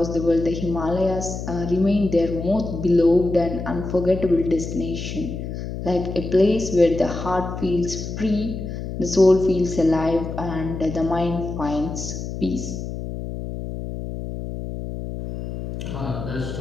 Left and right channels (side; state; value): left; noise; hum, 7 dB below the sound